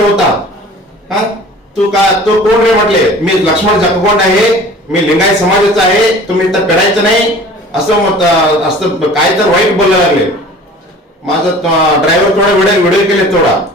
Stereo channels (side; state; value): both; normal; correlation 0.45